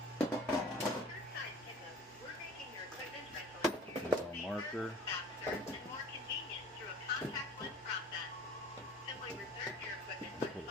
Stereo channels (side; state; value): both; normal; correlation 0.45